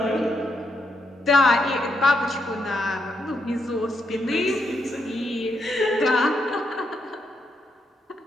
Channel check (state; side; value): normal; both; correlation 0.80